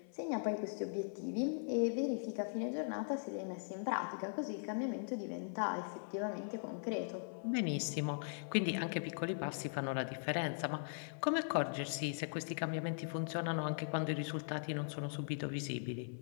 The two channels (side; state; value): right; silent; 51 dB below the other